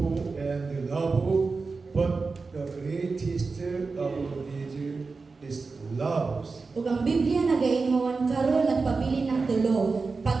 and love. But the greatest of these is love." Ug ang Biblia nagaingon karon nagpabilin ng tulo,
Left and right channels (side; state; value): left; quieter; 4.3 dB